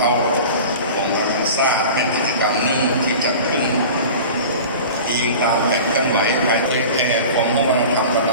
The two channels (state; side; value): inverted; both; correlation -0.37